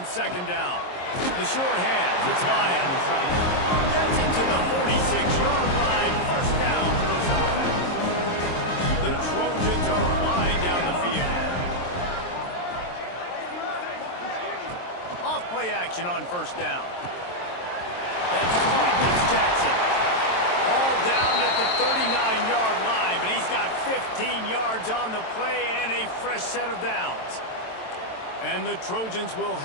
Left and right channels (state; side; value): late; right; 23 ms